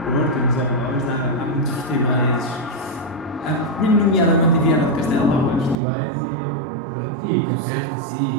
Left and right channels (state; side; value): drops out; left; at 5.8 s